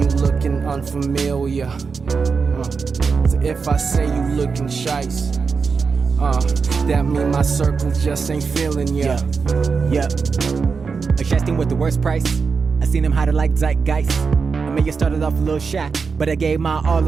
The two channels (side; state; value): left; quieter; 5.2 dB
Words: you looking unfamiliar. So if I say you looking shice, that mean my circle just ain't feeling ya. Yep. Adjusting with the worst price. I seen him hide it like zeitgeist. I may have started off a little shy, but I gave my all